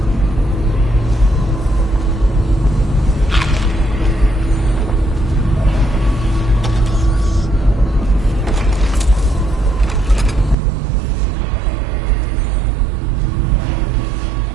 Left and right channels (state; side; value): drops out; left; at 10.6 s